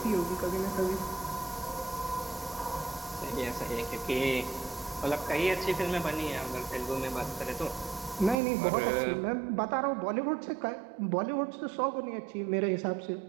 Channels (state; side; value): drops out; left; at 8.3 s